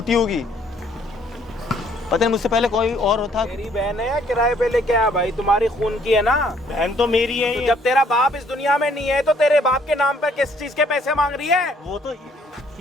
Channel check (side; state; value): both; normal; correlation 0.64